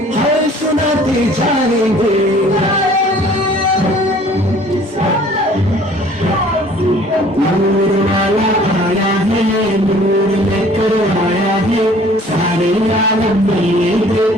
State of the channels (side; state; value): both; normal; correlation 0.53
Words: हर सुनाते जाएंगे. नूर वाला आया है, नूर लेकर आया है, सारे आलम में ये